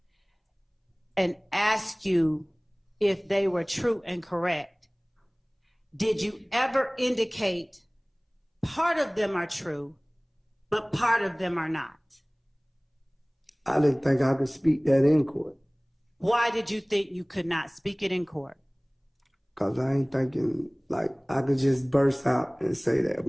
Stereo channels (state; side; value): identical; both; correlation 1.00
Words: and ask you if they were true and correct, did you ever indicate part of them are true, but part of them are not? I didn't think I could speak that in court. Why did you think you could not speak it in court? Because I ain't thinking like I could just burst out and say that